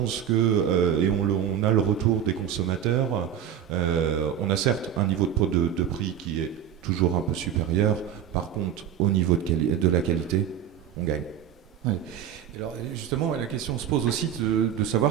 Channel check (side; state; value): left; quieter; 9.4 dB